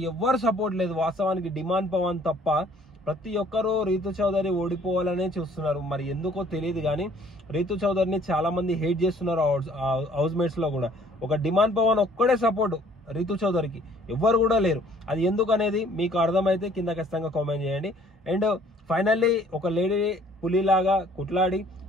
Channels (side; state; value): both; normal; correlation 0.57